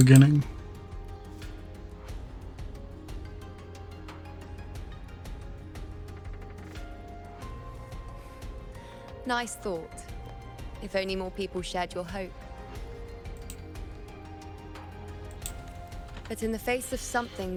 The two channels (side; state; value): both; identical; correlation 1.00